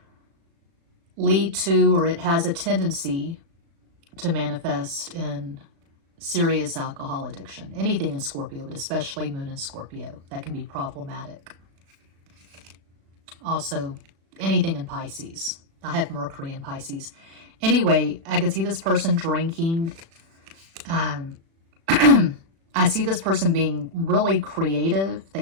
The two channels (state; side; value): late; left; 36 ms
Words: lead to, or it has a tendency to manifest in serious alcohol addiction. Anything in Scorpio, but especially Moon in Scorpio, that can be problematic. Also, anything in Pisces. I have Mercury in Pisces. I see this person being really creative.